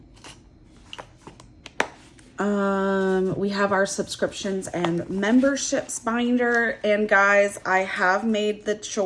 We have our subscriptions and memberships binder. And guys, I have made the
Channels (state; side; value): identical; both; correlation 1.00